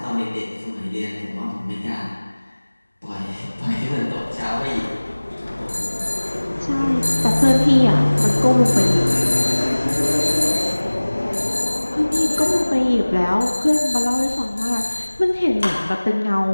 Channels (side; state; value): both; inverted; correlation -1.00